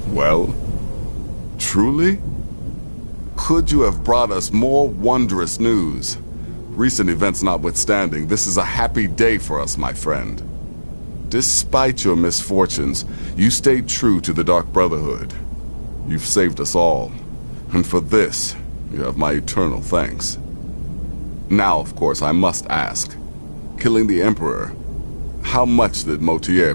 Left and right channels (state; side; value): inverted; both; correlation -1.00